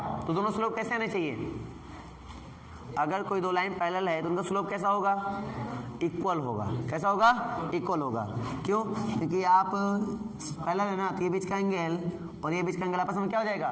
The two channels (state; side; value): identical; both; correlation 1.00